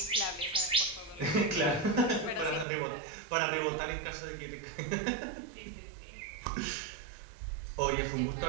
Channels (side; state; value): left; drops out; at 2.7 s